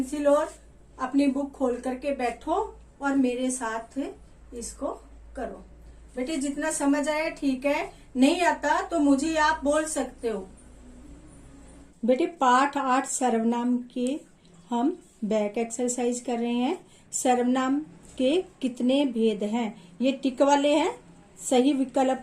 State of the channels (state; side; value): identical; both; correlation 1.00